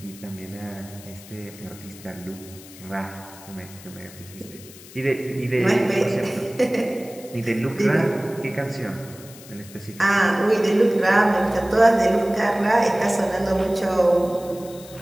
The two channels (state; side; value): noise; left; hiss, 19 dB below the sound